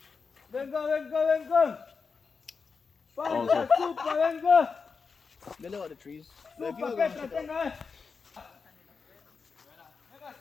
Venga. Also, Supa, venga. They live on the trees. Supa, que te tenga.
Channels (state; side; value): quieter; right; 5.1 dB